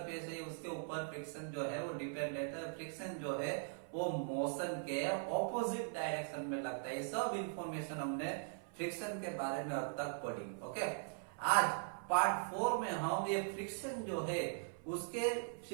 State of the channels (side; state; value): left; silent; 51 dB below the other